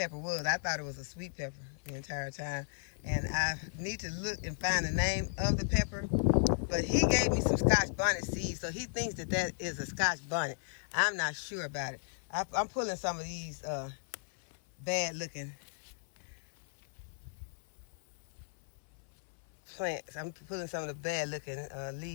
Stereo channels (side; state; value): right; silent; 54 dB below the other